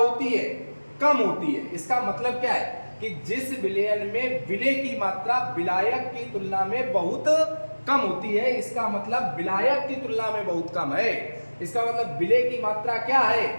है, कम होती है। इसका मतलब क्या है कि जिस विलयन में विलेय की मात्रा विलायक की तुलना में बहुत कम होती है, इसका मतलब विलायक की तुलना में बहुत कम है। इसका मतलब विलेय की मात्रा क्या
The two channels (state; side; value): inverted; both; correlation -1.00